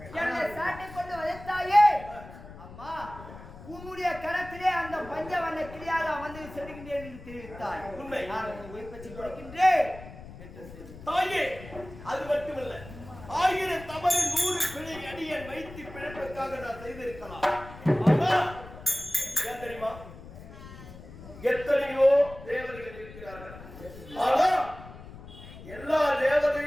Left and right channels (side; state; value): left; noise; rumble, 16 dB below the sound